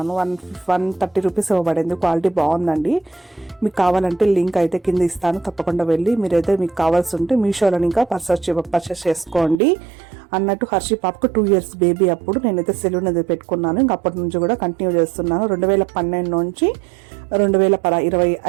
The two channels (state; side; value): drops out; left; at 9.6 s